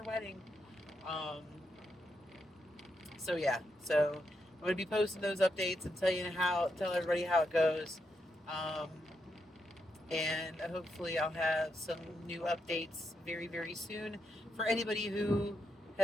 wedding. Um, so yeah, so I'm going to be posting those updates and tell everybody how it goes. Um, and hopefully I'll have some new updates very, very soon. For anybody who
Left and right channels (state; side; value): normal; both; correlation 0.82